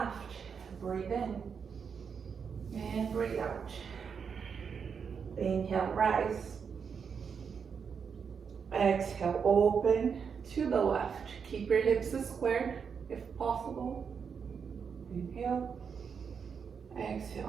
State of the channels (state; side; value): quieter; left; 6.4 dB